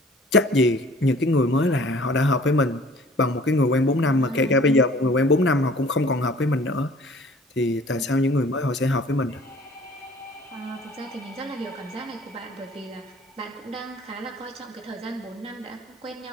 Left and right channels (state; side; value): normal; both; correlation 0.51